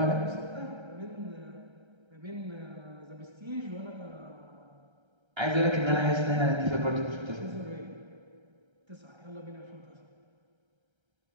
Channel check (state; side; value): late; left; 1.3 ms